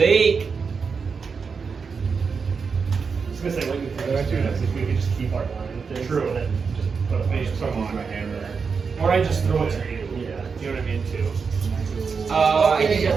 I was gonna say, what you think if we could just keep our line with this, True. and then just put a bunch Use of stuff Use on. my hammer. Or I just throw it to you. Yeah. You know what I mean, too. I think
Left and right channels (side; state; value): left; quieter; 5.4 dB